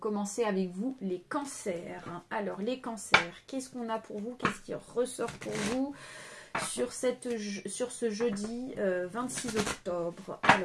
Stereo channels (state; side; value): identical; both; correlation 1.00